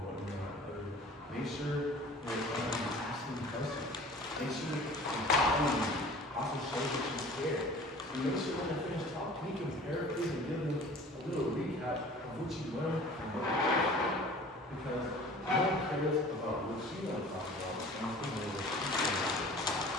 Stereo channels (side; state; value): both; normal; correlation 0.45